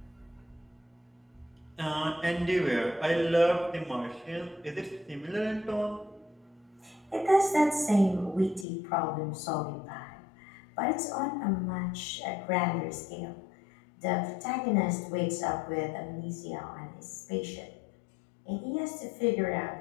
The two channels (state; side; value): drops out; right; at 8.7 s